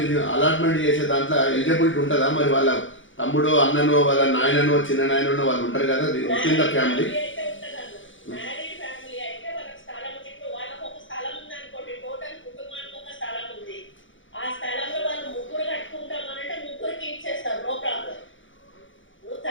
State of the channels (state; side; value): late; right; 0.56 ms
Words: అలాట్మెంట్ చేసే దాంట్లో ఎలిజిబిలిటీ ఉంటుందా? మరి వాళ్ళ తమ్ముడో, అన్ననో, వాళ్ళ నాయననో, చిన్న నాయననో వాళ్ళు ఉంటారు కదా కింద ఫ్యామిలీ.